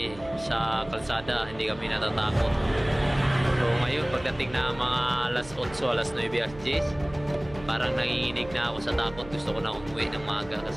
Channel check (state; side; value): noise; right; hum, 18 dB below the sound